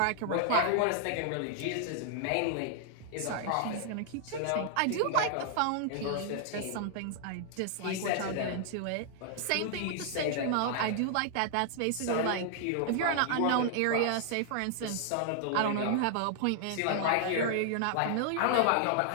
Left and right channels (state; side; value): different; both; correlation 0.00